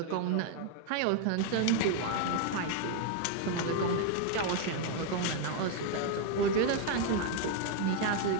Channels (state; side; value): different; both; correlation 0.00